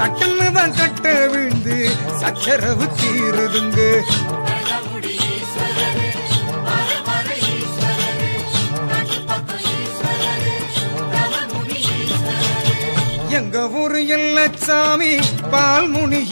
தான் கட்ட விழுந்து சச்சரவு தீருதுங்க எங்க ஊரு எல்லச்சாமி பால்முனி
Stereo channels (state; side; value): inverted; both; correlation -1.00